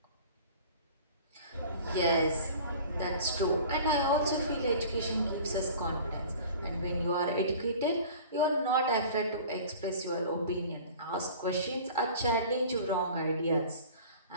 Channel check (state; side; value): inverted; both; correlation -0.43